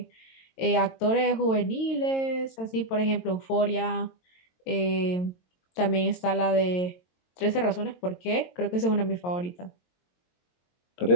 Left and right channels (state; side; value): late; right; 22 ms